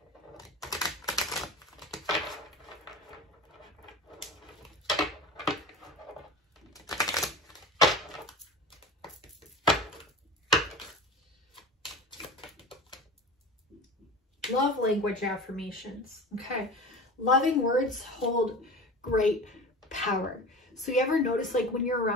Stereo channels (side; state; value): both; normal; correlation 0.33